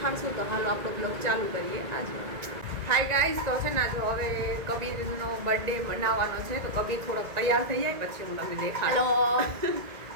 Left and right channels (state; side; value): late; left; 1.9 ms